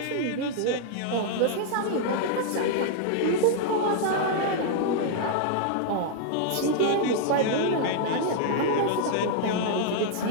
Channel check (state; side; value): different; both; correlation -0.01